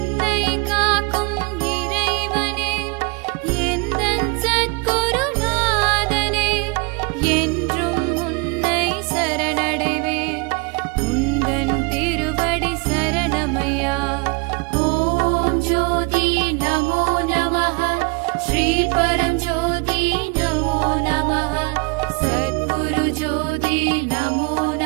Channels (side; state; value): left; quieter; 29.3 dB